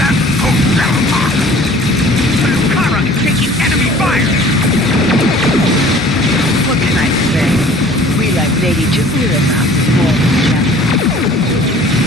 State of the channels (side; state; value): both; normal; correlation 0.50